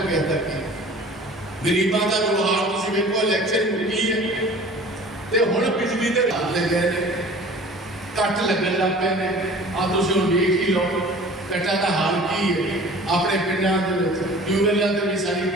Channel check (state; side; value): normal; both; correlation 0.45